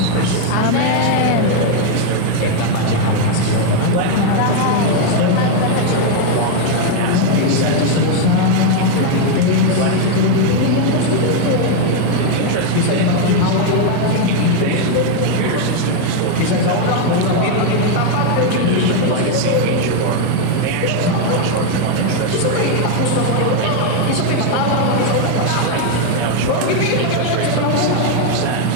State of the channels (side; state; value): both; different; correlation 0.01